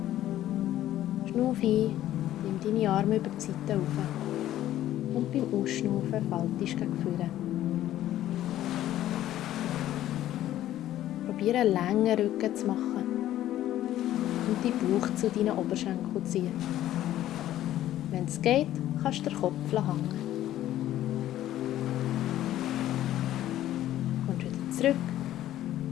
Schnuff ein, nimm deine Arme über die Seite rauf. Und beim Ausschnaufen faltest du gegen vorne. Probiere einen langen Rücken zu machen und deinen Bauch zu deinen Oberschenkeln zu ziehen. Wenn es geht, kannst du den Kopf hängen. Kommst wieder zurück,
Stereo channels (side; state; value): right; quieter; 13.1 dB